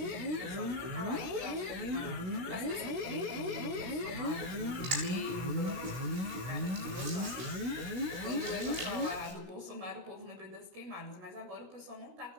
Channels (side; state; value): left; late; 17 ms